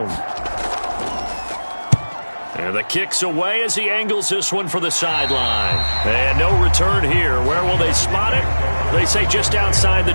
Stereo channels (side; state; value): both; inverted; correlation -1.00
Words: And the kick's away as he angles this one for the sideline. And no return here. Where will they spot it? They say just outside the